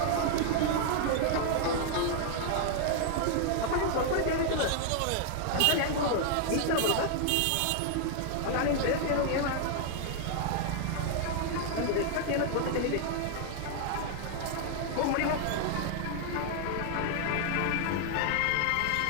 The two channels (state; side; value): different; both; correlation 0.00